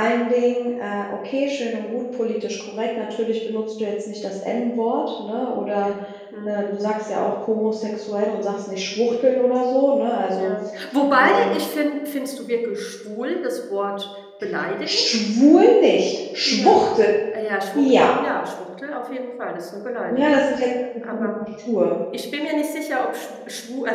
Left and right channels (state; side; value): identical; both; correlation 1.00